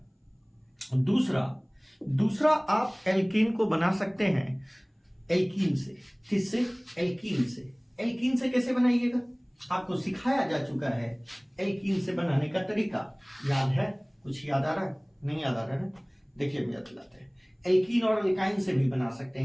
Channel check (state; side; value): identical; both; correlation 1.00